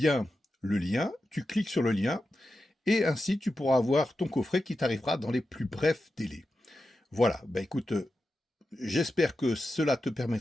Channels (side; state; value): both; normal; correlation 0.91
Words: le lien, tu cliques sur le lien, et ainsi tu pourras avoir ton coffret qui t'arrivera dans les plus brefs délais. Voilà, écoute, j'espère que cela te